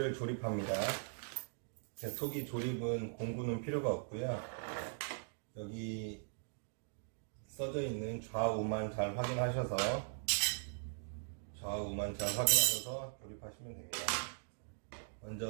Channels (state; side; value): silent; left; digital silence